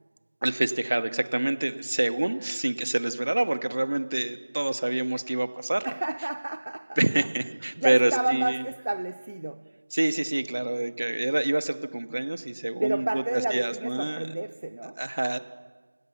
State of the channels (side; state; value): both; inverted; correlation -1.00